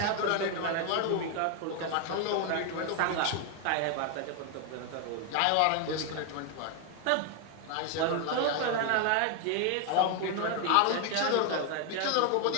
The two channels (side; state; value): both; different; correlation 0.01